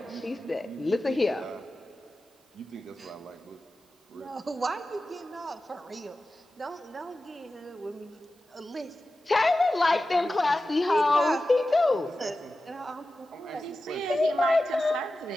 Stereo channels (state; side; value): normal; both; correlation 0.94